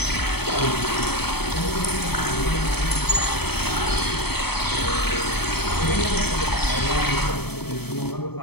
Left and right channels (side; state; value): right; late; 0.97 ms